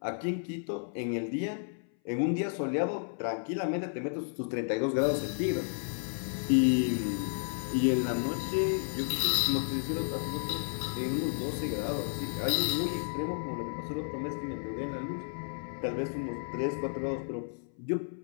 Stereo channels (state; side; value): silent; right; 56 dB below the other